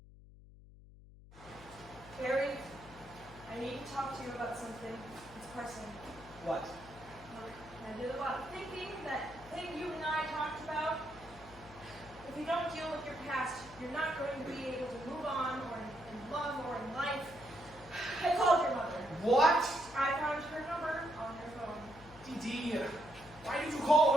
Barry, I need to talk to you about something. It's personal. What? Look, I did a lot of thinking. That thing you and I talked about. If you don't deal with your past, you're not going to be able to move on or in love or in life. I called your mother. What? I found her number on your phone. Dee Dee, why did you call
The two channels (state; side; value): noise; left; hum, 20 dB below the sound